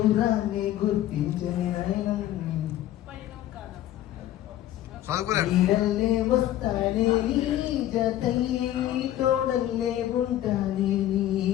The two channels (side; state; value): right; quieter; 13.1 dB